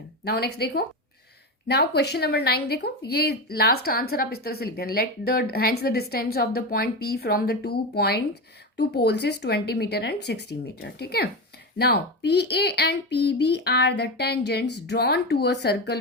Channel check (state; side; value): normal; both; correlation 0.18